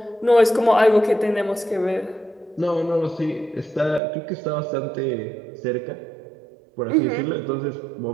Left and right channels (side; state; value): left; drops out; at 4.0 s